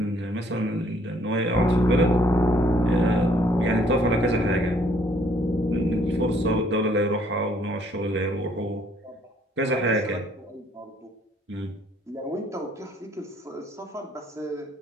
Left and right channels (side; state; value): both; normal; correlation 0.64